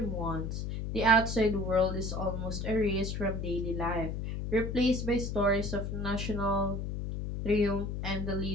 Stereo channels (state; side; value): noise; left; hum, 3 dB below the sound